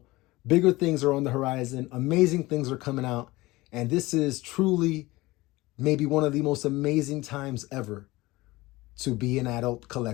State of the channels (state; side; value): quieter; right; 20.1 dB